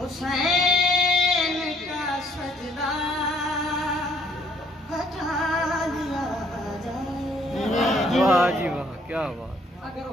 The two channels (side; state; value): both; normal; correlation 0.64